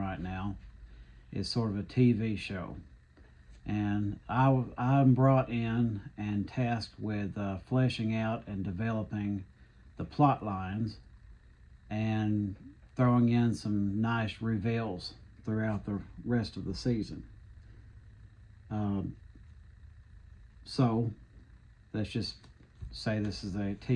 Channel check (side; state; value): both; identical; correlation 1.00